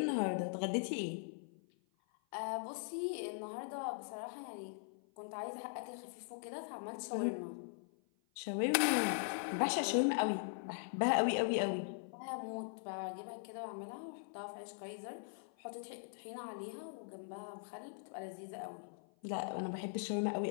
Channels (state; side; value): silent; right; 51 dB below the other